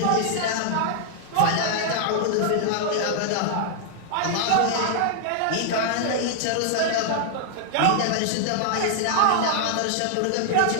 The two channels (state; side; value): different; both; correlation -0.01